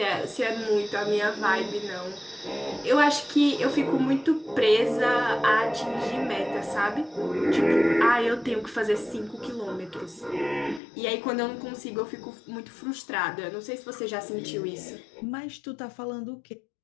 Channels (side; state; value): right; drops out; at 10.8 s